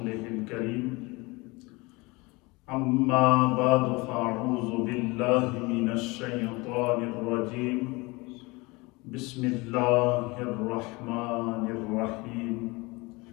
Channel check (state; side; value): quieter; right; 24.6 dB